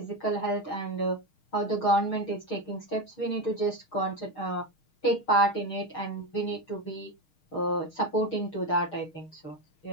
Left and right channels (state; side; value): late; right; 6.4 ms